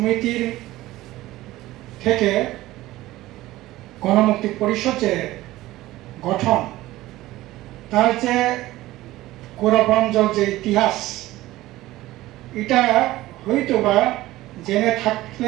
থেকে গণমুক্তি পরিষদ যে গঠন, তার যে গৌরবাঞ্জল যে ইতিহাস, এটা হয়তো বা জেনে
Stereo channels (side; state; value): left; quieter; 16.9 dB